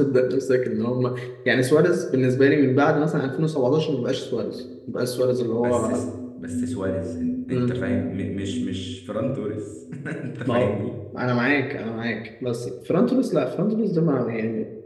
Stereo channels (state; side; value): identical; both; correlation 1.00